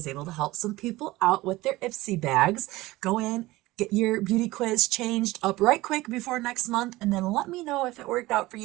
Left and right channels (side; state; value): left; quieter; 18.9 dB